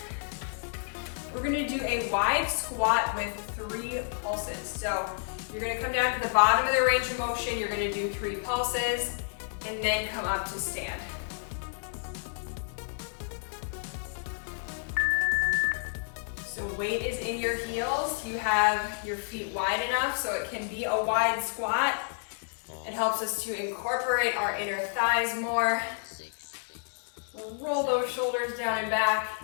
We're going to do a wide squat with 3 pulses. So you're going to come down to the bottom of the range of motion. You're going to do 3 pulses and then come up to stand. So weight is in your heels. You have your feet wide enough so it can be a wide squat. It helps us to incorporate our inner thighs more. Roll those shoulders down and back.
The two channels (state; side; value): silent; right; digital silence